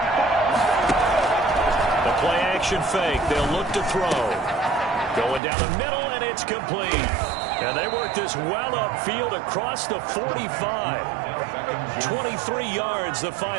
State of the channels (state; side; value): drops out; left; at 5.4 s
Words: The play action fake. They'll look to throw. Going down the middle, and it's complete. And they work this well upfield across the 45. 23 yards, the